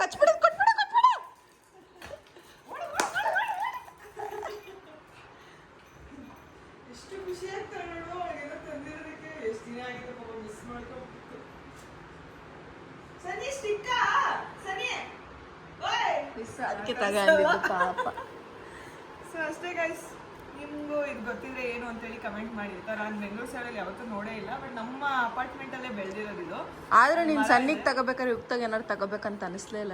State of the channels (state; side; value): identical; both; correlation 1.00